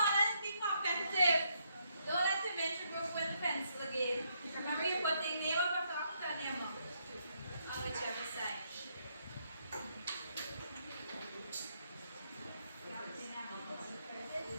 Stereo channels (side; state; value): both; inverted; correlation -0.75